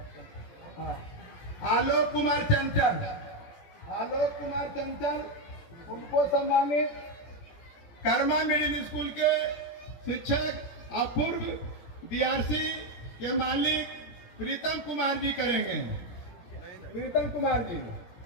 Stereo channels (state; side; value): late; right; 17 ms